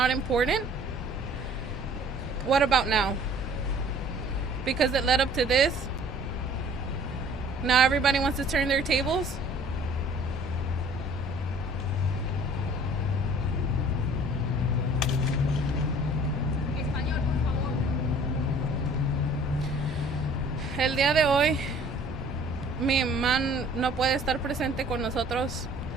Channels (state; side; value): normal; both; correlation 0.53